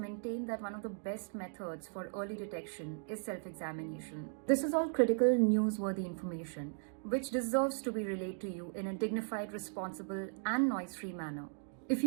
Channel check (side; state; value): left; silent; digital silence